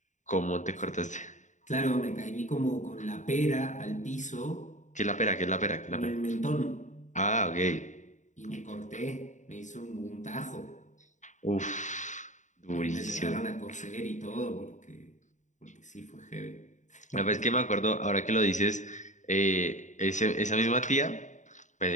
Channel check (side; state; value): right; late; 0.35 ms